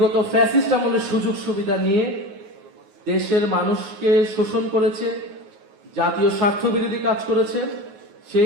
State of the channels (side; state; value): left; late; 9.4 ms